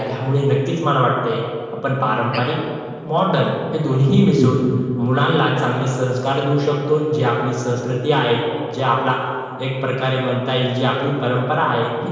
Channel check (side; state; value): both; identical; correlation 1.00